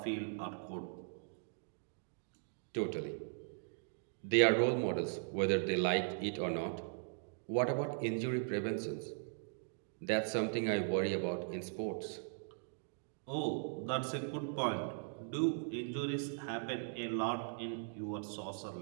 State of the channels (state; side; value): silent; left; digital silence